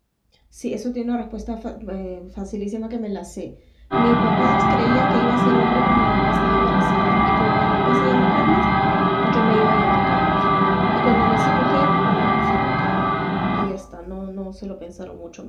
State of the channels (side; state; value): both; identical; correlation 1.00